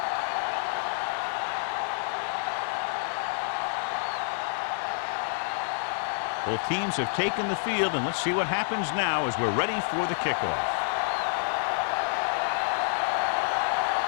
Both teams have taken the field, and let's see what happens now as we're ready for the kickoff.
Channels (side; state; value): right; silent; digital silence